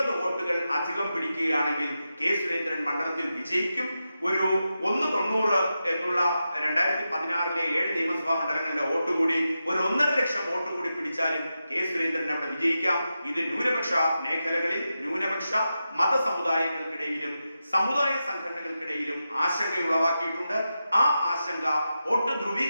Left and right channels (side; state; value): both; inverted; correlation -0.90